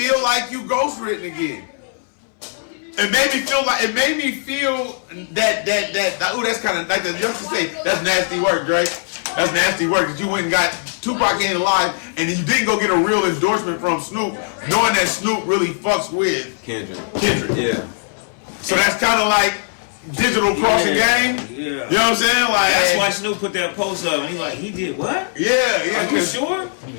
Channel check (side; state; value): right; silent; 63 dB below the other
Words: like you ghostwritten again. It made me feel that ooh, that's kind of like the youngsters say, that's nasty work, Drake. That's nasty work that you went and got Tupac ain't alive, and you didn't go get a real endorsement from Snoop, knowing that Snoop really fucks with Kendrick. Yeah. So that's kind of like digital crossing game. Yeah. You know what I'm saying? Like that's why Snoop put that post up. And he's like, he did what? Yeah. Are you sure?